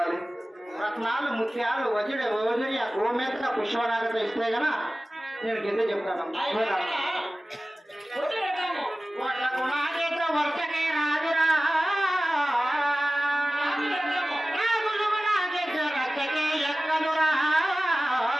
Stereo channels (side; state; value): both; normal; correlation 0.97